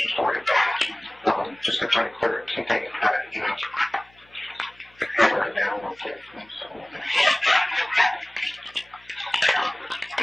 for you. Just to try to clear up some things that you know right now.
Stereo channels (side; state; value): left; noise; hum, 30 dB below the sound